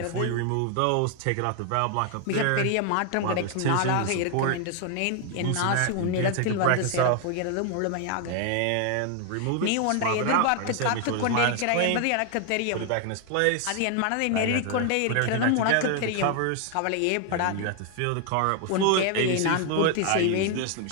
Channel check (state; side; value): different; both; correlation 0.00